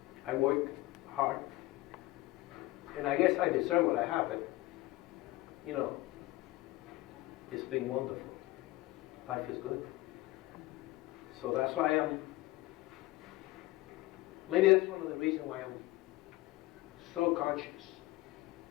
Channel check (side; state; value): right; quieter; 18.7 dB